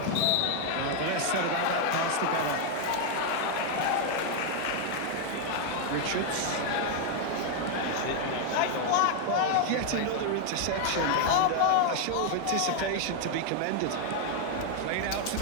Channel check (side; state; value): both; different; correlation 0.01